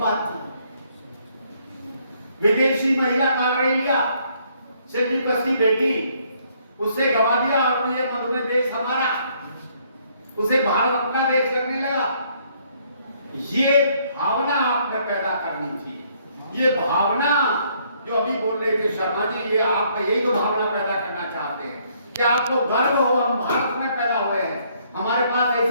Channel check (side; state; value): both; inverted; correlation -0.67